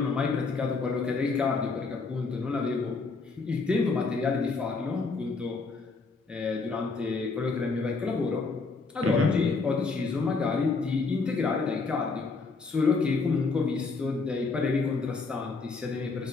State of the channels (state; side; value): quieter; right; 4.2 dB